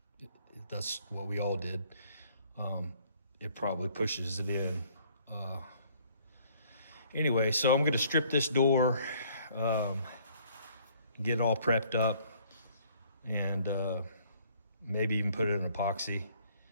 that's what we all did, it probably pushes it in. Anyway, so I'm going to strip this door, get it all prepped up, and maybe even put it in epoxy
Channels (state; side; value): inverted; both; correlation -0.60